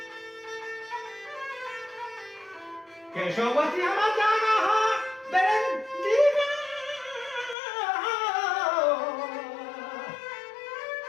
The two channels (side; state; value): right; drops out; at 7.6 s